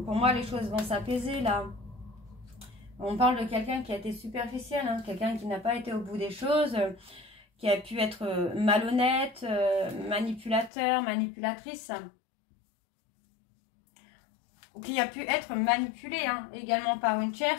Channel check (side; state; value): right; drops out; at 10.7 s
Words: pour moi, les choses vont s'apaiser là. On parle de quelqu'un qui a été superficiel, hein, quelqu'un qui n'a pas été au bout des choses, qui a pu être malhonnête, manipulateur, manipulatrice. Ou qui a pu être manipulé hein, également par une